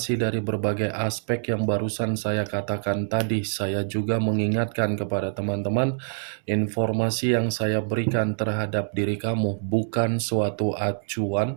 dari berbagai aspek yang barusan saya katakan tadi, saya juga mengingatkan kepada teman-teman, informasi yang saya berikan terhadap diri kamu bukan suatu acuan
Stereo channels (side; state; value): left; silent; digital silence